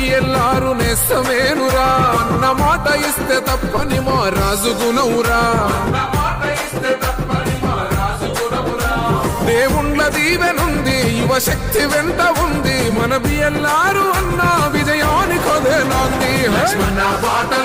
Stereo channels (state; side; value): identical; both; correlation 1.00